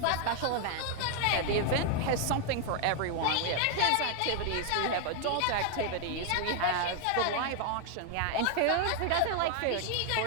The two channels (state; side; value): different; both; correlation 0.00